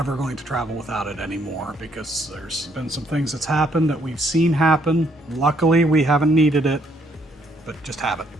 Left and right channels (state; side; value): normal; both; correlation 0.69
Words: going to travel without it anymore because there's been some things that's happened that we've seen happen. Luckily, we haven't needed it, but just have it.